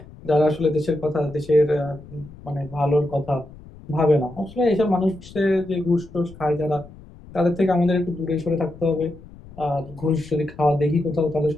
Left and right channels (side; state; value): left; noise; rumble, 19 dB below the sound